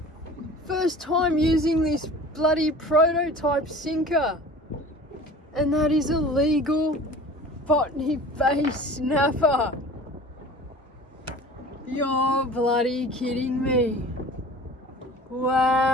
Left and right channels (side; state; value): both; normal; correlation 0.42